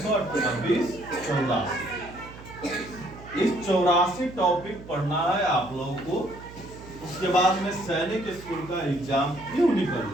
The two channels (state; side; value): noise; right; hum, 16 dB below the sound